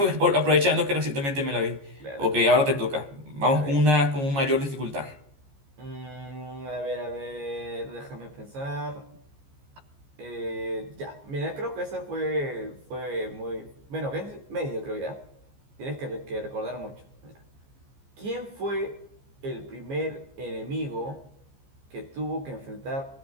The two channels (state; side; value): late; left; 14 ms